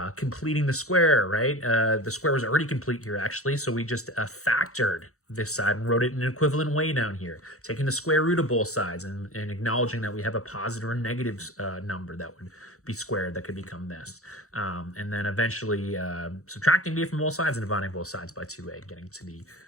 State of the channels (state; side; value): late; right; 0.64 ms